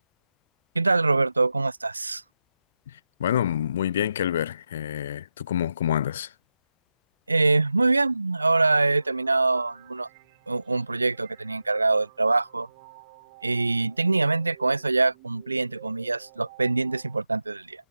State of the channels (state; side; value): inverted; both; correlation -0.91